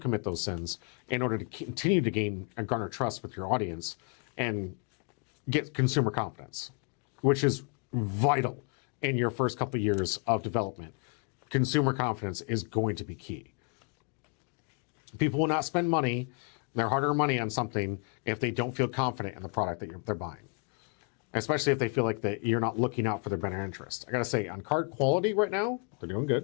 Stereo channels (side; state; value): right; quieter; 37.0 dB